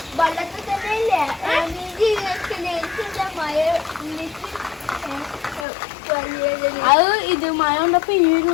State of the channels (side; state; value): right; drops out; at 5.7 s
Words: അത് ഇത് മഴ കൊണ്ടപ്പോ ഇനി